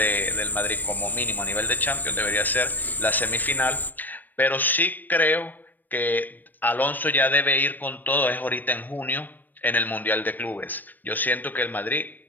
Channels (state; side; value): late; right; 0.089 ms